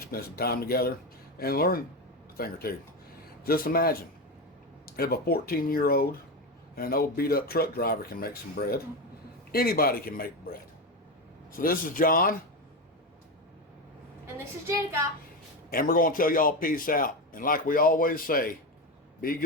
spend some time together and learn a thing or two. Just imagine if a 14-year-old and an old beat-up truck driver can make some bread, anybody can make bread. So this is John, And this is Janica. and we're going to tell y'all peace out. And like we always say, be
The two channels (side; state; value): both; normal; correlation 0.16